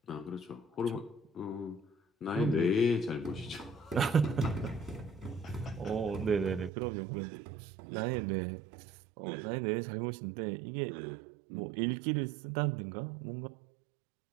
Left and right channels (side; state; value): left; drops out; at 6.7 s